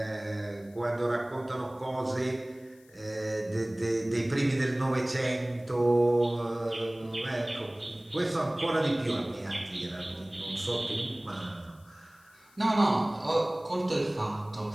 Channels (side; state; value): left; noise; hiss, 29 dB below the sound